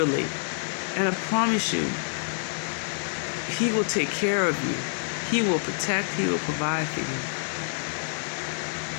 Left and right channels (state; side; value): silent; right; digital silence